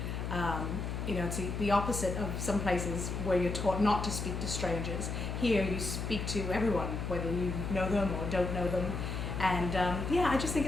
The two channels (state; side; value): noise; left; hum, 3 dB below the sound